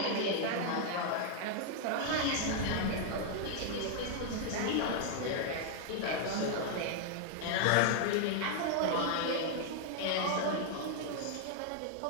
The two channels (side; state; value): both; different; correlation 0.00